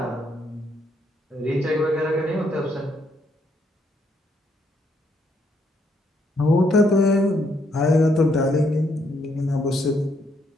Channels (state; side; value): normal; both; correlation 0.73